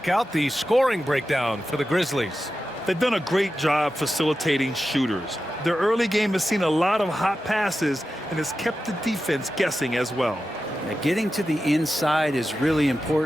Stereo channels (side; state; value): both; normal; correlation 0.92